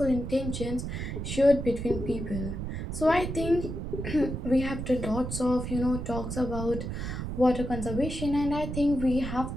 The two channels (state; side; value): noise; right; rumble, 5 dB below the sound